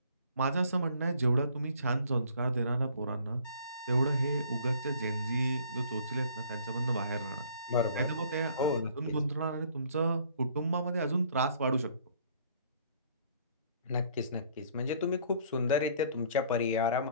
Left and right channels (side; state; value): both; inverted; correlation -0.57